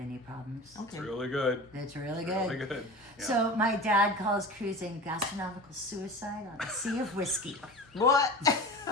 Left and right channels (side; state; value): left; noise; hum, 30 dB below the sound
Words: problems. Okay. It's really good. It's really good. Really good. Yeah. So my dad calls cruising gastronomical suicide on a sea of whiskey. What?